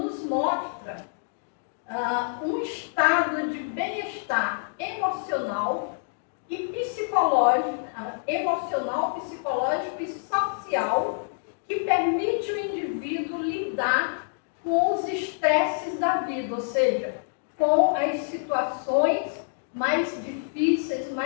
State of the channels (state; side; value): silent; right; digital silence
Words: mostra um estado de bem-estar emocional e psicológico, e social, que permite ao indivíduo lidar com os estresses da vida, ou seja, com as situações mais difíceis,